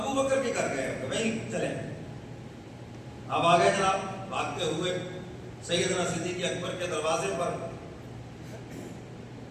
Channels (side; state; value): both; identical; correlation 1.00